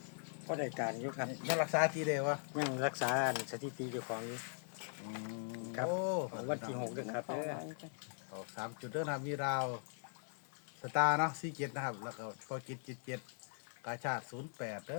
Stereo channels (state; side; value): silent; right; digital silence